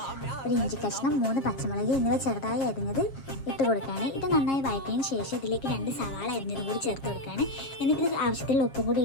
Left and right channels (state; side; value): late; right; 7.4 ms